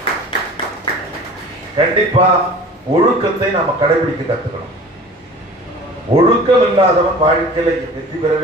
கண்டிப்பா ஒழுக்கத்தை நாம கடைபிடிக்க கத்துக்கணும். ஒழுக்கம் இல்லாதவன் வாழ்க்கையில வெற்றி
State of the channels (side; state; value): both; normal; correlation 0.42